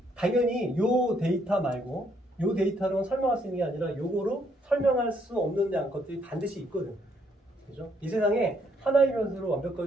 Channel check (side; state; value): both; normal; correlation 0.71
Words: 당연히 요 데이터 말고 요 데이터로 설명할 수 있는 게 아니라 요거로 설명할 수 없는 것들이 반드시 있거든. 그죠? 이 세상에 하나의 변수로